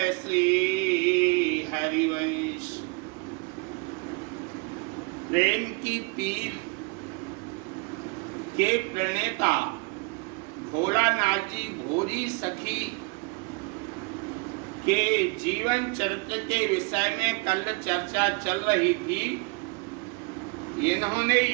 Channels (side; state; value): left; quieter; 29.9 dB